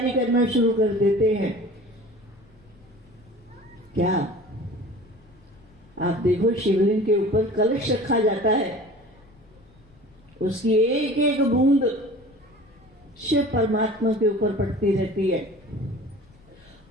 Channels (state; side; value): noise; left; rumble, 28 dB below the sound